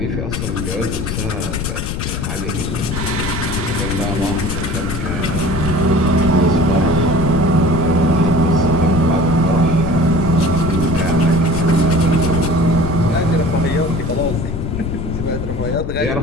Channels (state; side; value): noise; left; rumble, 3 dB below the sound